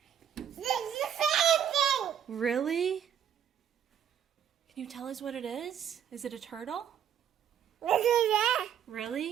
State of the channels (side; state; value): left; quieter; 9.1 dB